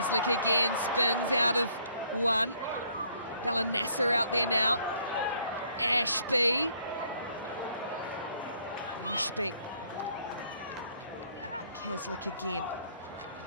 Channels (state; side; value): inverted; both; correlation -0.65